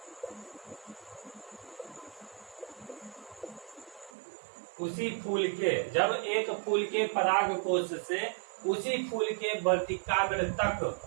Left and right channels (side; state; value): left; drops out; at 4.1 s